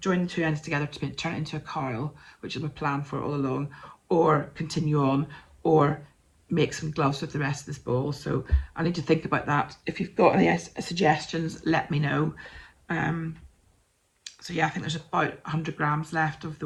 join the two ends together to turn it into a cowl, which is my plan for it all along, or continue on, or make some gloves with the rest of this ball. So I need to think about that. If you've got any suggestions, let me know. So yeah, I think there's about 100 grams left of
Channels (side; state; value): both; identical; correlation 1.00